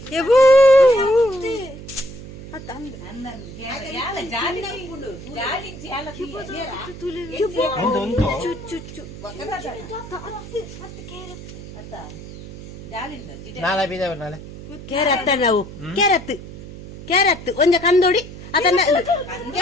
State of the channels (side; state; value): right; noise; hum, 13 dB below the sound